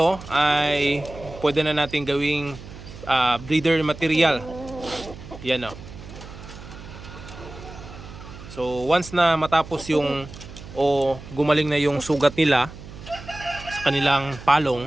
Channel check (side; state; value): right; noise; hum, 15 dB below the sound